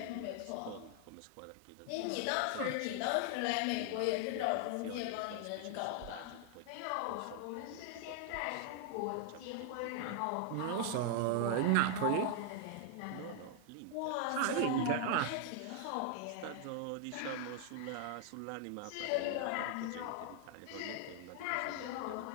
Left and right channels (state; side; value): different; both; correlation 0.00